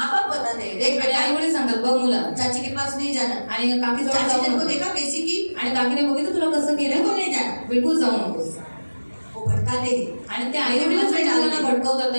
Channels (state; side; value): inverted; both; correlation -1.00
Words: बाप बताते हैं, देख बेटा आई वडील सांगतात बघ मुला, चाची के पास नहीं जाना. आणि काकी जवळ चाची जाऊ ने को नको. देखा कैसी की, आणि काकीने बघितलं तुला कसं केलं, बिल्कुल नहीं जाना. बिलकुल जाऊ नकोस. वो भटकाते हैं. आणि ते आई वडीलच मुलांना भटकवतात,